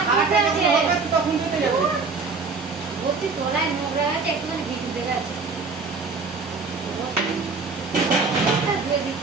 তোলায় নোংরা আছে একটুখানি ভিজে দেবে আছে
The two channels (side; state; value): left; quieter; 4.3 dB